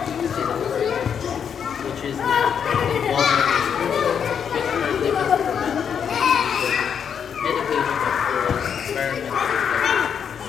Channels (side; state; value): right; quieter; 7.6 dB